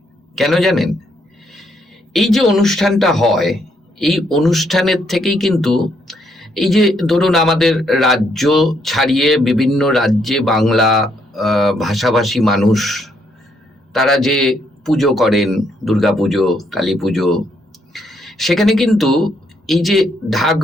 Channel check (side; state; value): both; normal; correlation 0.73